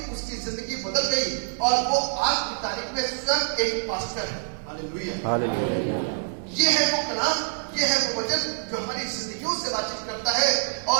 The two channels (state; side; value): silent; left; 60 dB below the other